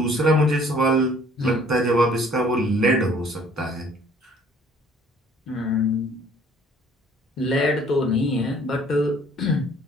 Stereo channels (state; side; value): normal; both; correlation 0.57